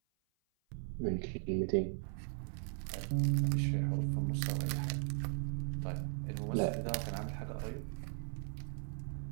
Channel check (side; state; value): left; silent; 52 dB below the other